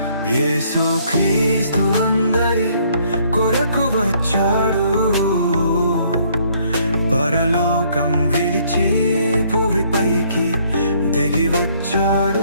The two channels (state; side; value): inverted; both; correlation -0.65